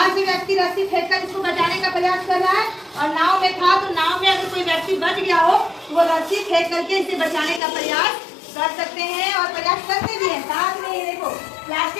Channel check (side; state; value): right; drops out; at 7.6 s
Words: से व्यक्ति रस्सी फेंककर इसको बचाने का प्रयास कर रहा है और नाव में था, तो नाव में अगर कोई व्यक्ति बच गया हो तो वो रस्सी फेंक करके इसे बचाने का प्रयास कर सकते हैं और प्रयास करते भी हैं। साथ में ये देखो